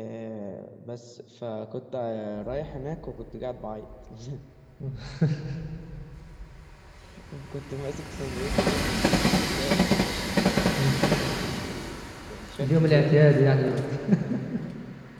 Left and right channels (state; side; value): identical; both; correlation 1.00